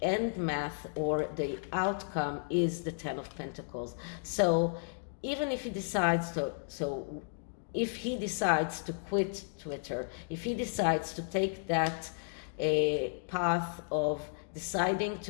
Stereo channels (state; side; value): silent; right; digital silence